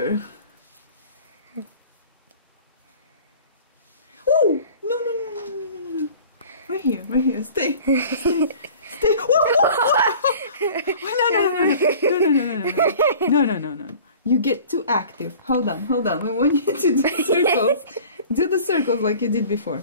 Oh no no no no no no no! Right here, right here. Stay, stay, stay. No no no no no no no no no no no! You get too active. Hold on, hold on. We want you to do circles. Do the circles like you did before.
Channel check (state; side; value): inverted; both; correlation -0.45